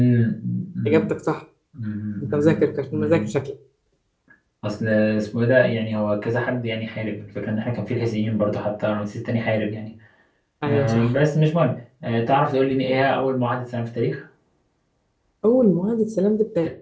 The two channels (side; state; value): both; identical; correlation 1.00